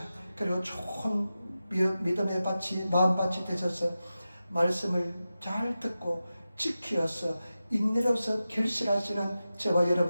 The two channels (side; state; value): both; inverted; correlation -0.93